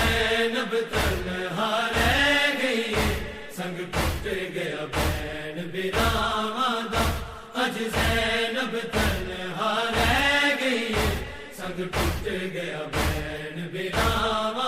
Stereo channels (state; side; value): identical; both; correlation 1.00